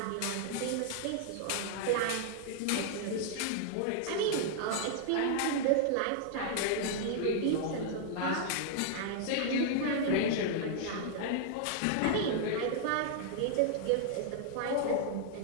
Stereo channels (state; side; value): different; both; correlation -0.01